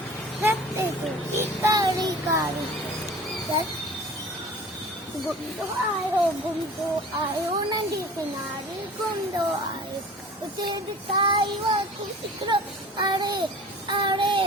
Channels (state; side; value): normal; both; correlation 0.42